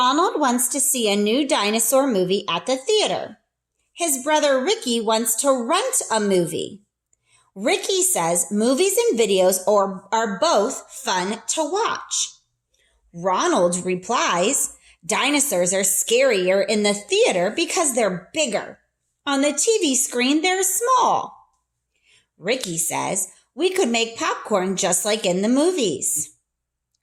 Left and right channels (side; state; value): both; identical; correlation 1.00